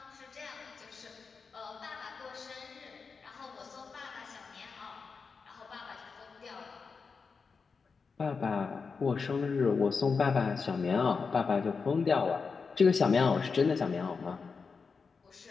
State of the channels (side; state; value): right; quieter; 5.1 dB